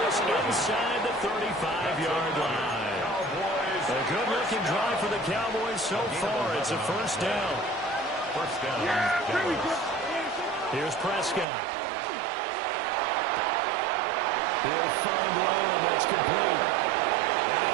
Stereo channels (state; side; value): drops out; left; at 11.5 s